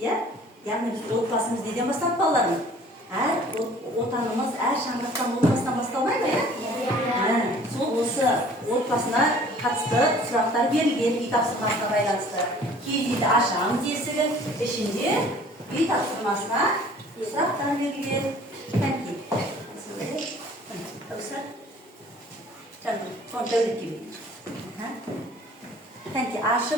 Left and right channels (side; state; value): both; normal; correlation 0.51